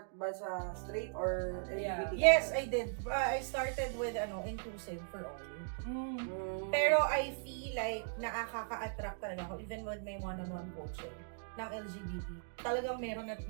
ba sa straight or Yeah. LGBT? Yes, I did. I started with inclusive for all. Mm. Pero I feel like nakaka-attract talaga ako even with my one-on-one coaching ng LGBT. Talagang meron at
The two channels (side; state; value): left; silent; digital silence